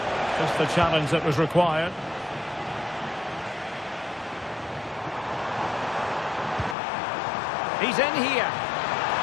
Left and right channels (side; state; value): right; drops out; at 6.8 s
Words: Just the challenge that was required. He's in here.